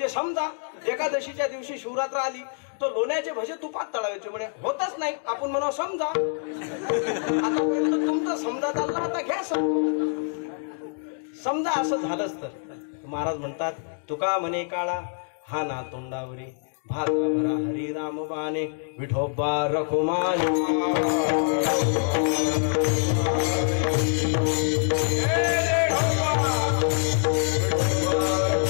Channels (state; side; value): silent; right; digital silence